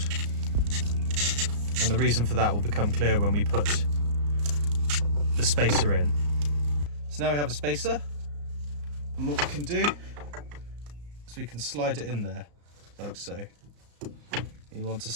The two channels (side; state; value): left; late; 34 ms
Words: and the reason for that will become clear when we put the spacer in. So now we have a spacer, and what we can do is we can slide it in there like so. You want to